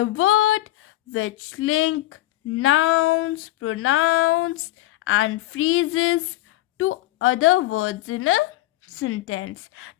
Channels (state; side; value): quieter; right; 16.6 dB